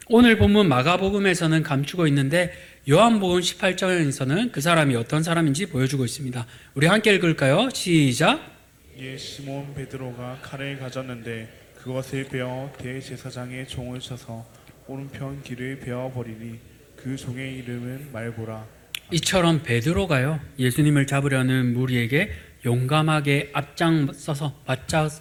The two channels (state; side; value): identical; both; correlation 1.00